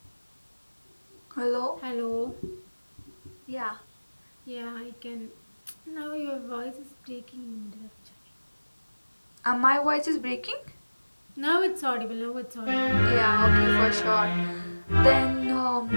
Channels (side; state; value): both; inverted; correlation -1.00